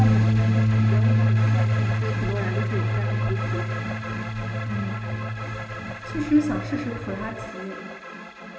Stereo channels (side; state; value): both; identical; correlation 1.00